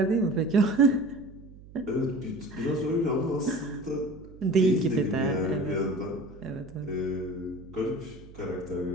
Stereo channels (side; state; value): right; noise; hum, 19 dB below the sound